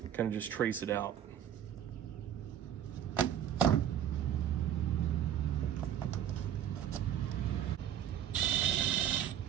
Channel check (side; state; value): left; quieter; 9.9 dB